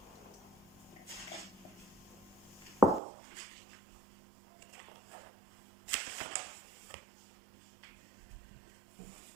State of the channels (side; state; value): left; drops out; at 3.0 s